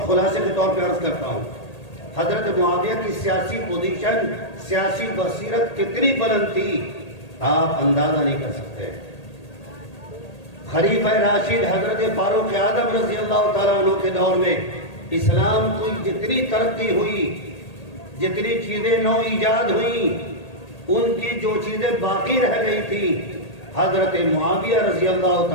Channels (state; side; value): late; right; 1.8 ms